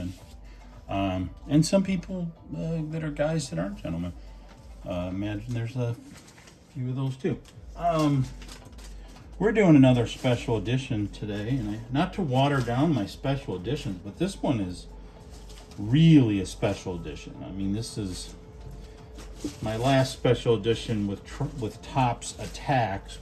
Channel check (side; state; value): both; identical; correlation 1.00